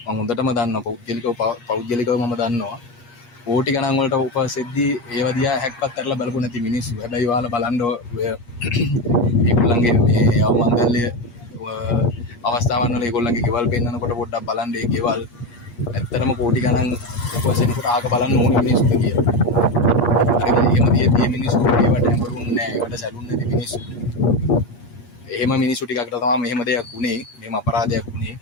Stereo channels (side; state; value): right; late; 8.4 ms